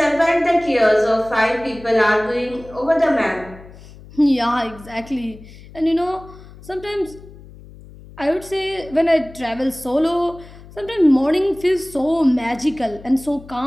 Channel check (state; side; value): noise; left; hum, 19 dB below the sound